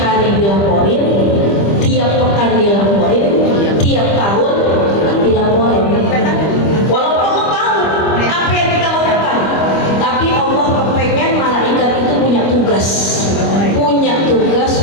hari dilaporin, tiap pekan dilaporin, tiap tahun dilaporin. Walaupun Allah tahu apa yang kita lakukan, tapi Allah kepengen malaikat itu punya tugas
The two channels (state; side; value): late; right; 25 ms